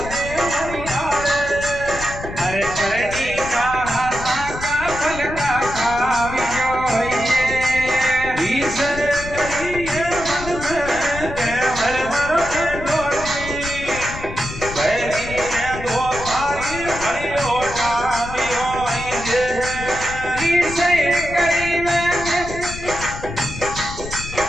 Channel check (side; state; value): left; noise; rumble, 10 dB below the sound